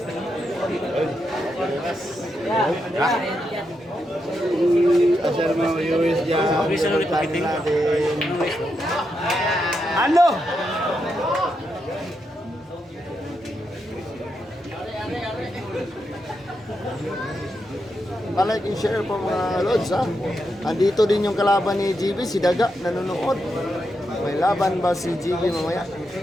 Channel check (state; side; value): normal; both; correlation 0.84